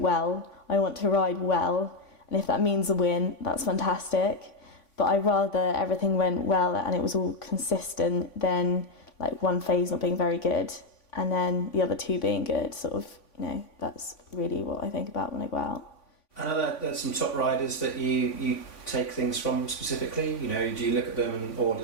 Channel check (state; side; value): late; right; 3.5 ms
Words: I want to ride well, and if that means a win, that's fantastic. But I'd rather everything went well and it was all consistent than like one phase not being very good. and then the other 2 being good. Sort of, that's really what I think about when I go out. I know there's some top riders that you take things from specifically. Do you look at them, or